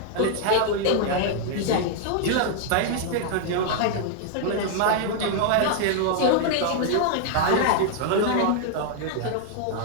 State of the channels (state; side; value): different; both; correlation -0.01